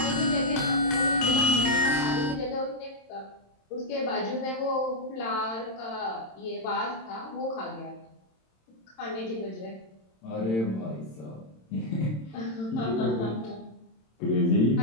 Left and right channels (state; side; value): late; right; 27 ms